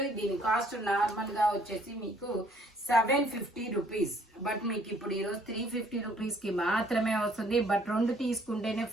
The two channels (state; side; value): normal; both; correlation 0.62